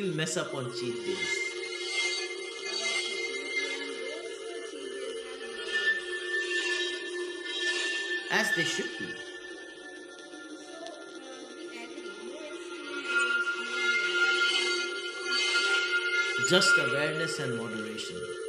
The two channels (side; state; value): both; identical; correlation 1.00